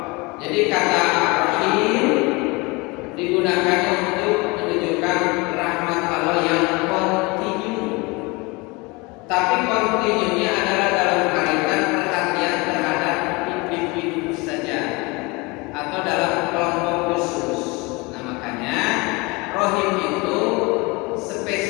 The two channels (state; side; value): quieter; right; 25.8 dB